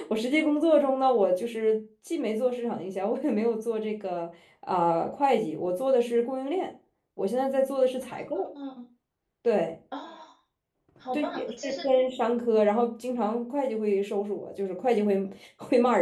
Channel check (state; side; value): identical; both; correlation 1.00